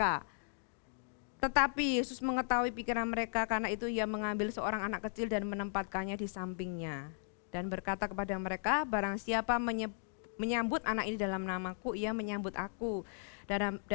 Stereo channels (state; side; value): silent; right; digital silence